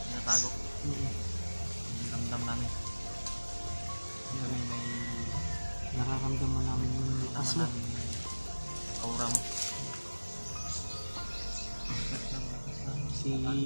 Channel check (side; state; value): both; inverted; correlation -1.00